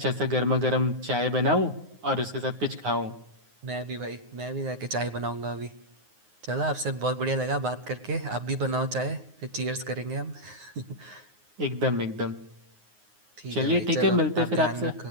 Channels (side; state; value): left; late; 9.6 ms